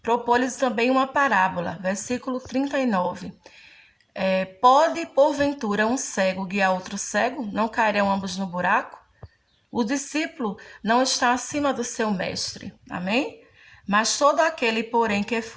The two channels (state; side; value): identical; both; correlation 1.00